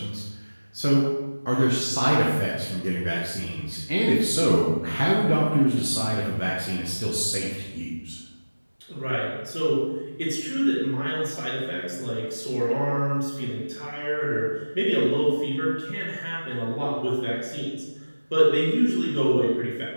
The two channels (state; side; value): inverted; both; correlation -1.00